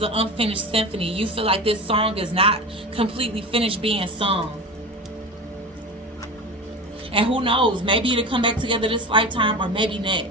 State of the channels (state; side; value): normal; both; correlation 0.28